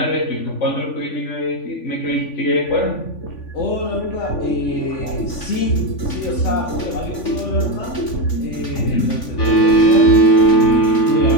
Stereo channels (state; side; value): late; right; 3.5 ms